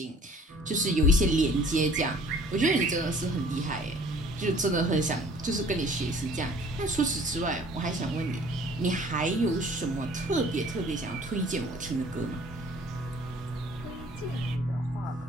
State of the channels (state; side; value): normal; both; correlation 0.53